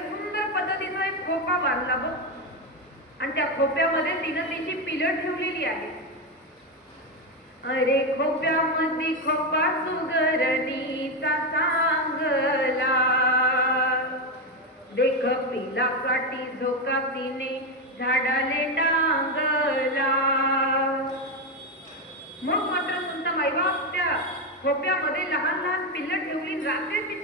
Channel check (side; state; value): both; normal; correlation 0.10